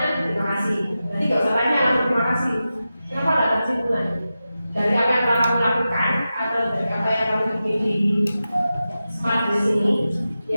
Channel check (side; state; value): both; inverted; correlation -0.92